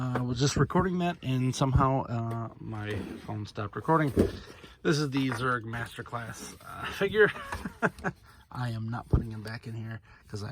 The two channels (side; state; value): both; identical; correlation 1.00